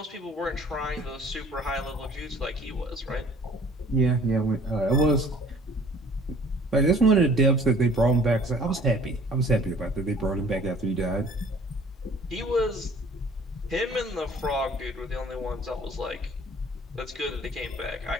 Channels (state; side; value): normal; both; correlation 0.53